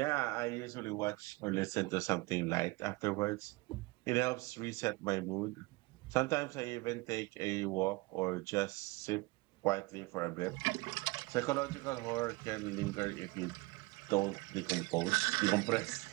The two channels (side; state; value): left; quieter; 23.9 dB